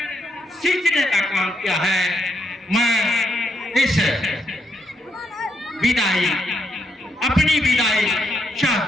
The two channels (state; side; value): normal; both; correlation 0.78